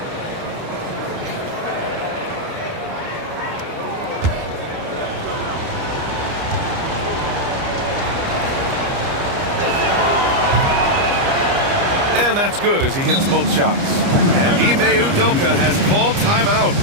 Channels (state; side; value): late; left; 29 ms